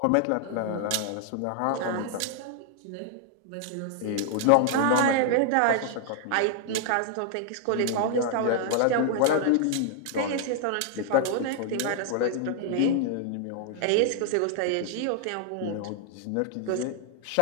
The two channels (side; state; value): both; different; correlation 0.00